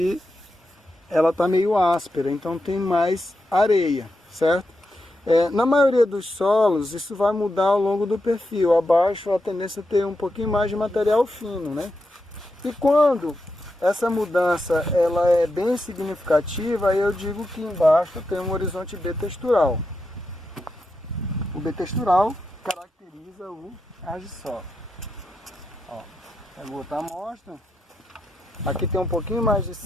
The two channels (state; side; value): normal; both; correlation 0.86